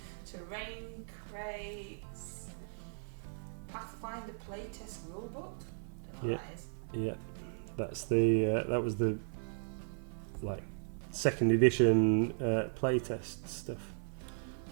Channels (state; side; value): silent; left; 53 dB below the other